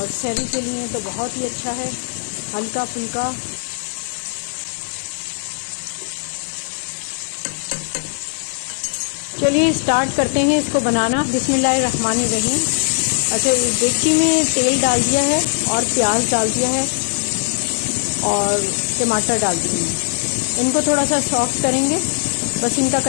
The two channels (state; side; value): silent; right; digital silence